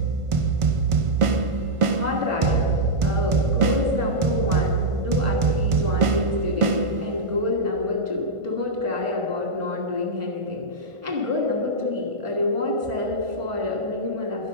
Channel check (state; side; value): late; left; 1.5 ms